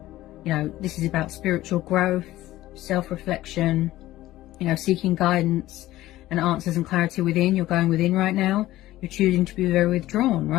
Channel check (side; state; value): right; quieter; 15.7 dB